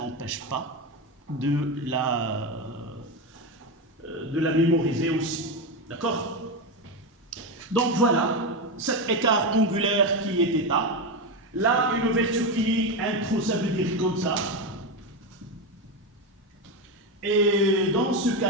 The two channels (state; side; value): normal; both; correlation 0.13